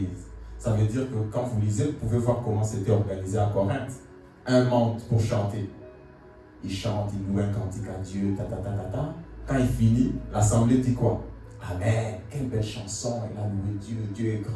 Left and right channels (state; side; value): identical; both; correlation 1.00